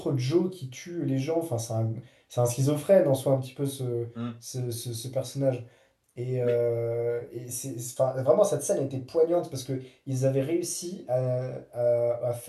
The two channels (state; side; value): identical; both; correlation 1.00